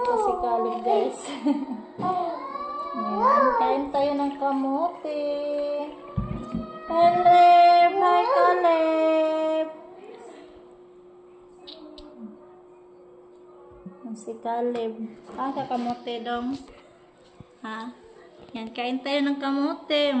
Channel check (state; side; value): identical; both; correlation 1.00